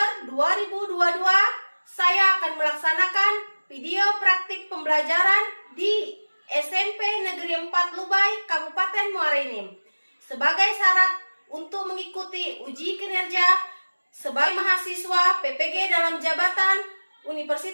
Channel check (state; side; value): inverted; both; correlation -1.00